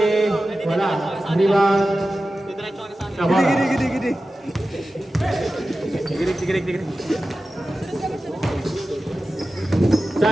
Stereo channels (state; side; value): normal; both; correlation 0.94